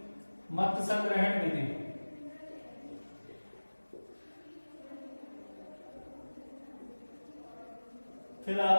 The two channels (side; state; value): both; inverted; correlation -1.00